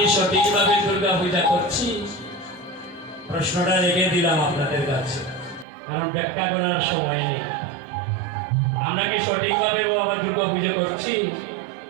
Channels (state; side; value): drops out; left; at 5.7 s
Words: সঠিকভাবে দুর্গা পূজা করছি? প্রশ্নটা রেখে দিলাম আপনাদের কাছে, কারণ ব্যাখ্যা করার সময় নেই। আমরা কি সঠিকভাবে বাবা দুর্গা পুজো করছি?